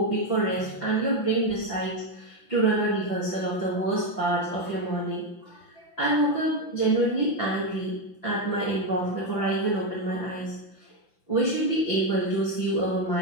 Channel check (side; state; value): right; late; 5.9 ms